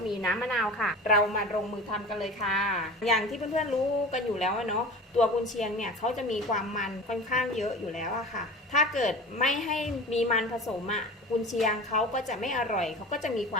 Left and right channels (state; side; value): normal; both; correlation 0.35